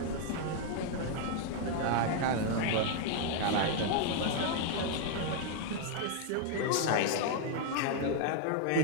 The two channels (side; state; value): both; different; correlation 0.00